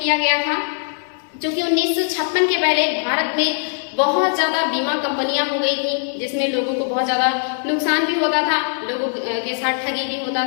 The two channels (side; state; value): right; silent; digital silence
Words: गया था, जो कि 1956 के पहले भारत में बहुत ज्यादा बीमा कंपनियां हो गई थी, जिसमें लोगों को बहुत ज्यादा नुकसान भी होता था, लोगों के साथ ठगी भी होता